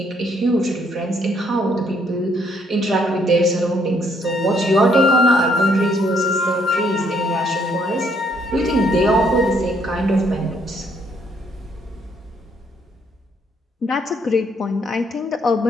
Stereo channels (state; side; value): normal; both; correlation 0.69